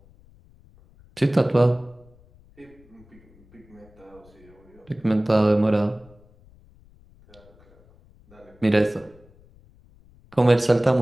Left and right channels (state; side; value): noise; left; rumble, 28 dB below the sound